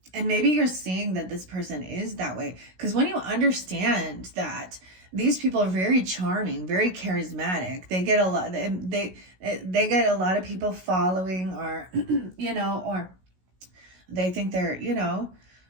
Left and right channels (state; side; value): late; left; 16 ms